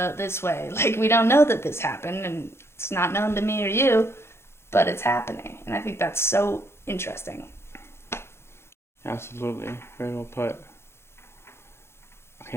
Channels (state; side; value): late; right; 0.12 ms